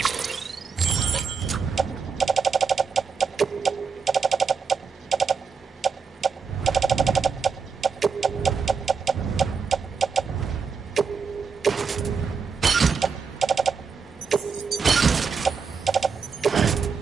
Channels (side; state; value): left; quieter; 5.4 dB